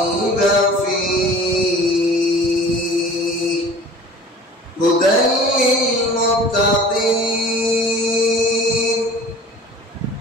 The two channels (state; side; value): normal; both; correlation 0.45